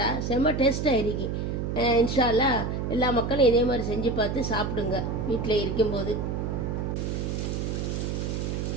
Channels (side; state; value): right; noise; hum, 2 dB below the sound